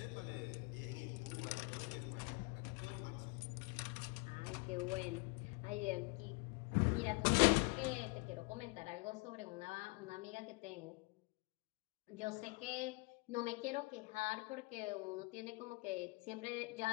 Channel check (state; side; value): quieter; right; 27.6 dB